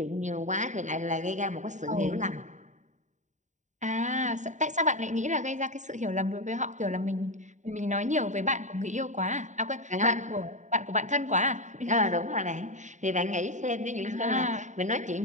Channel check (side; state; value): left; late; 0.35 ms